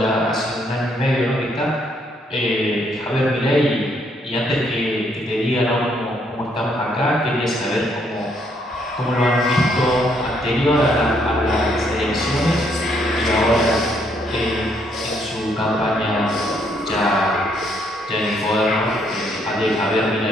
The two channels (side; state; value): both; normal; correlation 0.71